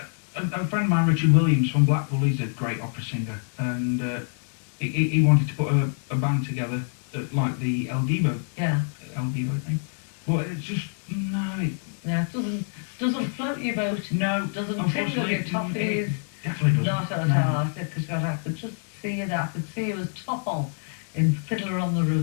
friend of mine, Richard Williams from Blackpool, he's a great opera singer, and he wanted to put a band together like the El Divo thing. But it's just, no, Yeah, it doesn't float your boat. no, Doesn't tingle unfortunately, your toffees. it definitely Not doesn't. at all. I said, because I could just see you there. I could see you as tall in Fiddler on the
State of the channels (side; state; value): right; silent; 61 dB below the other